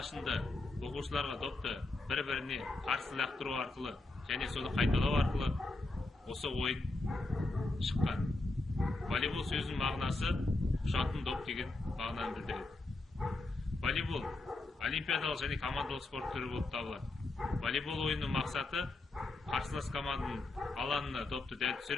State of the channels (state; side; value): quieter; right; 3.1 dB